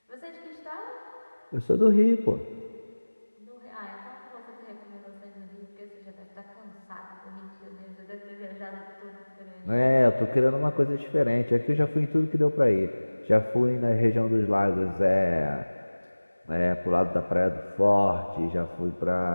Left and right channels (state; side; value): inverted; both; correlation -1.00